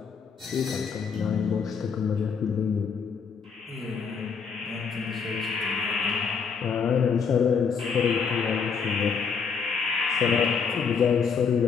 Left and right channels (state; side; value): quieter; right; 6.0 dB